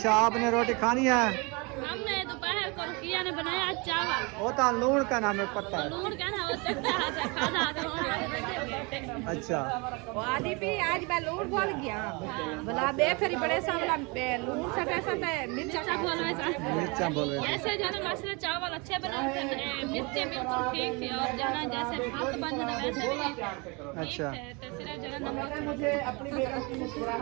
आपने रोटी खानी है? हमने दोपहर को रुकिया ने बनाया चावल। होता लूण का नाम है, पता है। लूण का ना वो चखता है, खाना अच्छा आदि भी आज मैं लूण बोल गया। बोला बेफरी बड़े सा बोला लूण सा कैसा था, मिर्चा बोल वैसा। मिर्चा बोले। ऐसे जो है ना मसाले चावल अच्छे बनाते हैं, मिर्चे बिल्कुल ठीक थी, और जो है ना जैसे भात बन जाता वैसे भी अच्छा ठीक थे। तो सिर्फ जो है नमक मुझे अपनी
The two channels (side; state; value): left; quieter; 28.9 dB